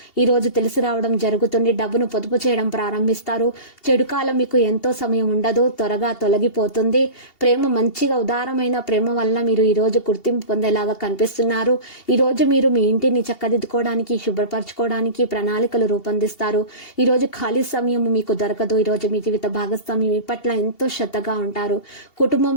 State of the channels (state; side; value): late; right; 2.7 ms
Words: ఈ రోజు తెలిసి రావడం జరుగుతుంది. డబ్బును పొదుపు చేయడం ప్రారంభిస్తారు. చెడు కాలం మీకు ఎంతో సమయం ఉండదు. త్వరగా తొలగిపోతుంది. ప్రేమ మంచిగా ఉదారమైన ప్రేమ వల్ల మీరు ఈ రోజు గుర్తింపు పొందేలాగా కనిపిస్తున్నారు. ఈ రోజు మీరు మీ ఇంటిని చక్కదిద్దుకోవడానికి శుభ్రపరచుకోవడానికి ప్రణాళికలు రూపొందిస్తారు. ఈ రోజు ఖాళీ సమయం మీకు దొరకదు. ఈ రోజు మీ జీవిత భాగస్వామి మీ పట్ల ఎంతో శ్రద్ధగా ఉంటారు.